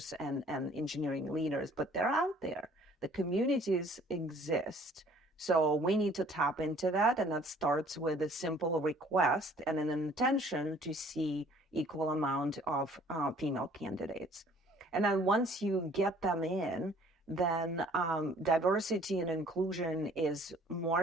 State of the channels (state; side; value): normal; both; correlation 0.55